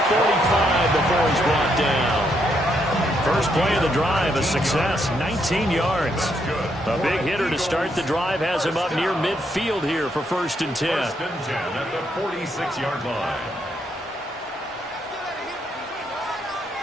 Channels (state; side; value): normal; both; correlation 0.76